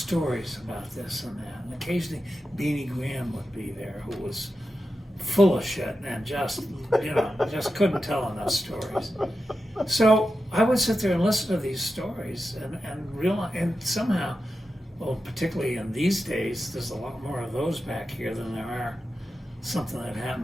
about this and that. And occasionally Beanie Graham would be there, who was full of shit and just couldn't tell enough stories. So I would sit there and listen to these stories and realize, and somehow, well, particularly in these days, there's a lot more of those back here than there are something that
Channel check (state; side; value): normal; both; correlation 0.91